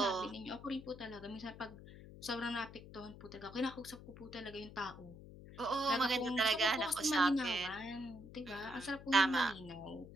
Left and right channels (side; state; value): left; noise; hum, 16 dB below the sound